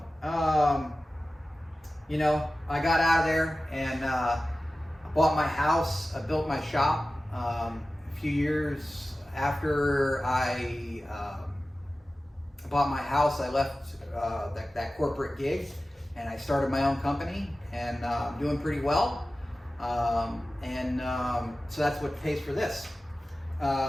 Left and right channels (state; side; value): normal; both; correlation 0.96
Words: you know, I got out of there and I bought my house, I built my shop. A few years after I bought my house, I left that corporate gig and I started my own company, and I'm doing pretty well. So that's what pays for this.